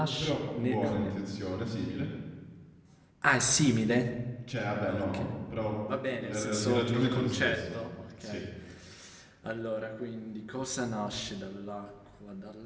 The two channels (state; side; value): identical; both; correlation 1.00